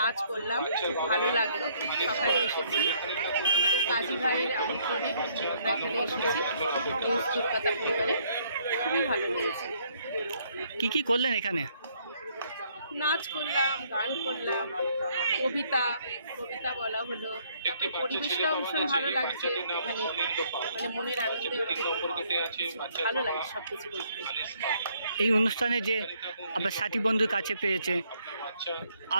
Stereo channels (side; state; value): both; inverted; correlation -0.66